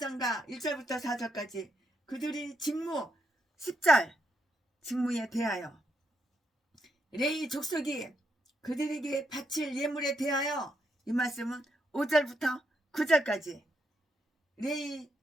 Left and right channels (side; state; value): both; normal; correlation 0.80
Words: 1절부터 4절까지. 그들이 직무 10절 직무에 대하여, 레위 족속이 그들에게 바칠 예물에 대하여, 이 말씀은 5절부터 9절까지. 레위